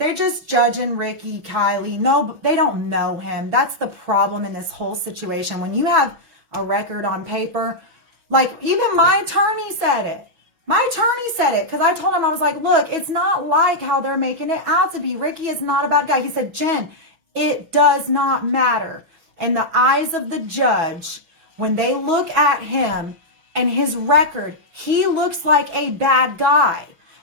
just judging Ricky, Kylie. No, they don't know him. That's the problem in this whole situation. When you have a record on paper, like even my attorney said it. My attorney said it because I told him, I was like, look, it's not like how they're making it out to be. Ricky is not a bad guy. He said, Jen, it does not matter. In the eyes of the judge, when they look at him and his record, he looks like a bad guy.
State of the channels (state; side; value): late; left; 6.1 ms